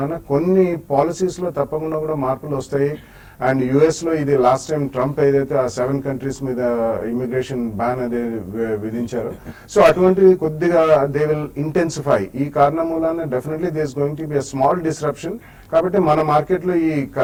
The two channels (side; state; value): both; identical; correlation 1.00